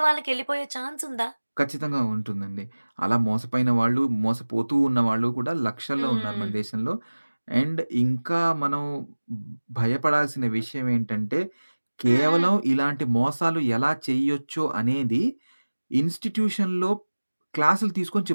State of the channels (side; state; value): both; inverted; correlation -1.00